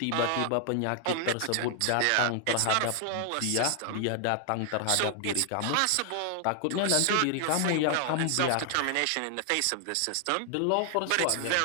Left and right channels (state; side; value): different; both; correlation 0.00